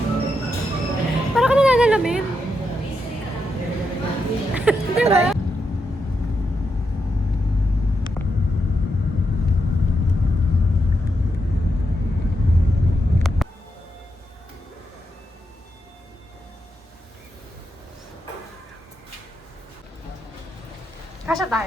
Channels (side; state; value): both; normal; correlation 0.84